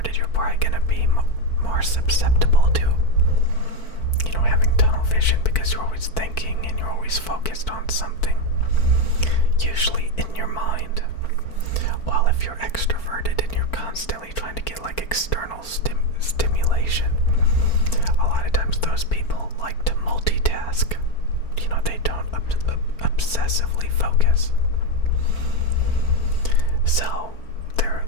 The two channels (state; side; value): late; right; 4.4 ms